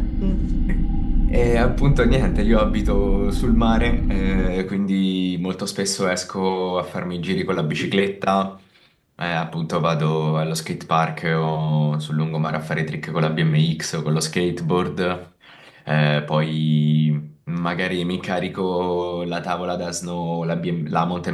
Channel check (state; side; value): identical; both; correlation 1.00